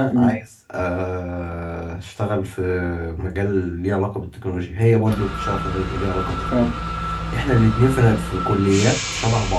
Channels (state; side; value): identical; both; correlation 1.00